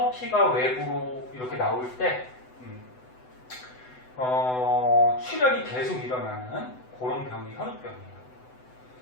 피가 외부로 이렇게 나올 때 출혈이 계속 일어나는 그런 병이 혈우병이에요.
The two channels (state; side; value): late; right; 7.9 ms